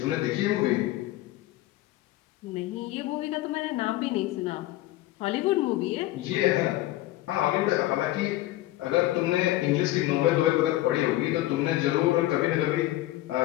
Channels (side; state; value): right; quieter; 16.4 dB